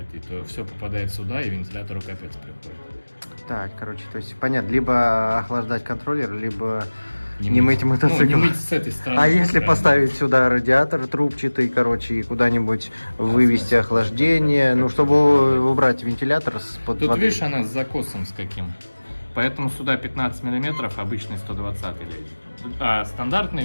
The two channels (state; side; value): inverted; both; correlation -1.00